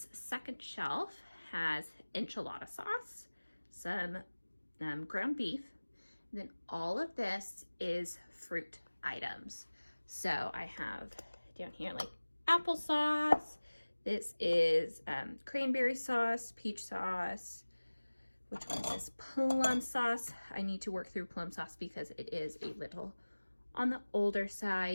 second shelf has enchilada sauce, some ground beef, and then all of this is fruit items. So I have down here like applesauce. This is cranberry sauce, peach sauce. Which one is this? Plum sauce. I need to work through plum sauce because it is a little on the older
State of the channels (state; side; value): inverted; both; correlation -1.00